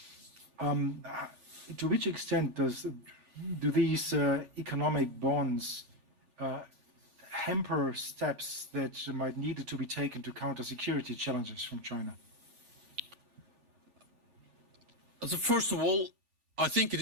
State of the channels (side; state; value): left; late; 3.4 ms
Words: To which extent do these economic bonds hamper steps that might need to be taken to counter security challenges from China? So first of all, I think it